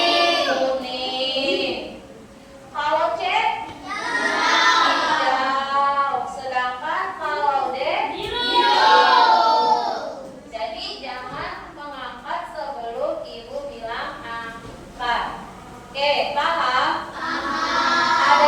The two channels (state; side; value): identical; both; correlation 1.00